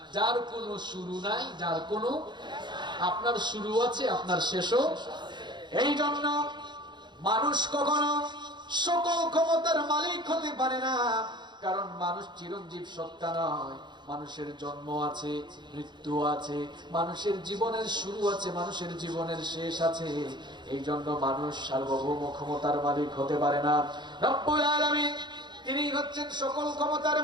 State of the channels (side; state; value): left; late; 0.22 ms